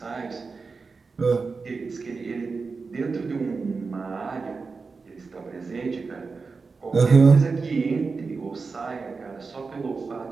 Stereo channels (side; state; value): left; quieter; 4.5 dB